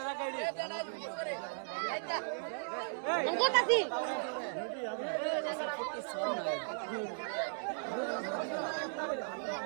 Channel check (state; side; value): silent; left; digital silence